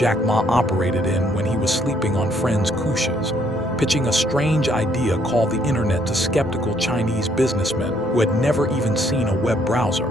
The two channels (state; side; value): normal; both; correlation 0.67